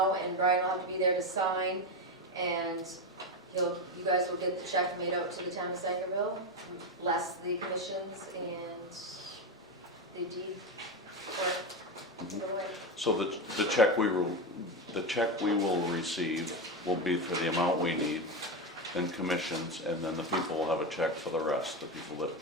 and Brian will have to be there to sign. And you guys will get the check made out to the town of Sangerville, less the commissions and the deed for it. So the check we will receive will be for the amount we need, then commissions, and then the people will have a check for the rest, the people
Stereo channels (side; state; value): both; normal; correlation 0.13